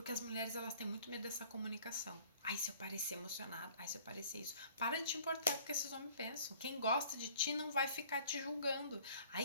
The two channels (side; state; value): both; inverted; correlation -0.53